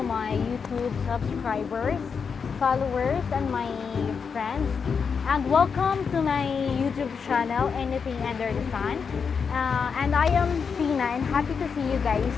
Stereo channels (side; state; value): right; quieter; 6.0 dB